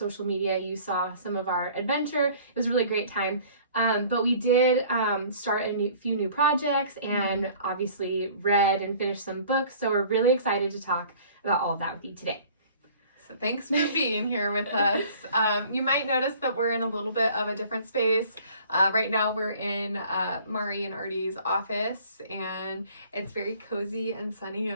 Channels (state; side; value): inverted; both; correlation -0.51